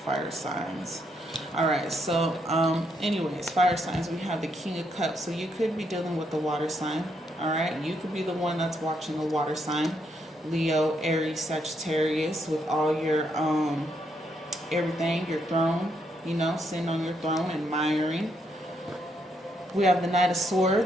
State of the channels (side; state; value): both; normal; correlation 0.76